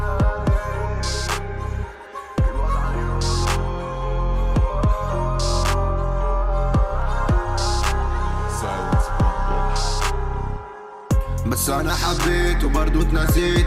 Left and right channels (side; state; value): both; identical; correlation 1.00